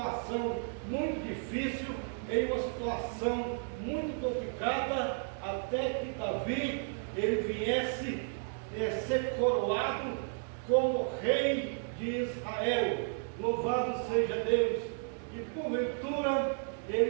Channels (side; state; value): left; silent; 56 dB below the other